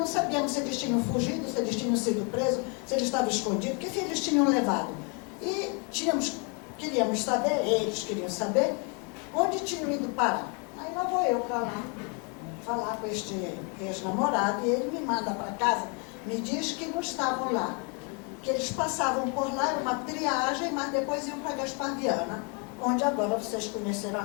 sabíamos se eles tinham fugido, se eles tinham sido presos, se eles estavam escondidos, que eles tinham levado. E queríamos saber, eles queriam saber, onde tinham ido parar. Aí lá vou eu para lá, falar com este ex-namorado, e ele me manda para casa, me diz que não estavam lá, que eles passavam por lá, era uma triagem, mas depois iam para Gaspar Viana, onde agora vocês conheceram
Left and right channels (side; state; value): right; quieter; 35.4 dB